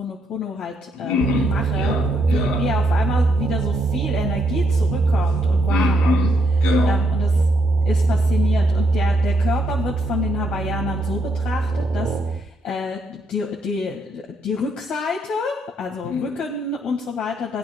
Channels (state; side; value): normal; both; correlation 0.76